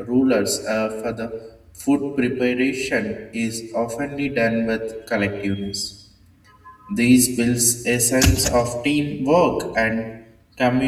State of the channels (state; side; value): identical; both; correlation 1.00